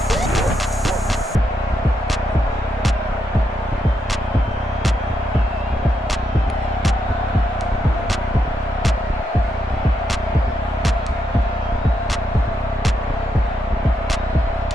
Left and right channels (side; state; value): both; normal; correlation 0.80